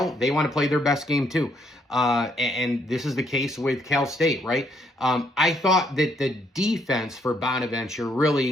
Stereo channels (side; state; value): both; normal; correlation 0.71